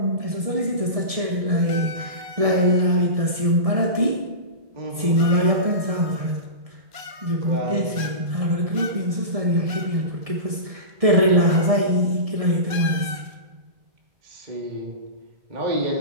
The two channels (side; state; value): left; late; 1.7 ms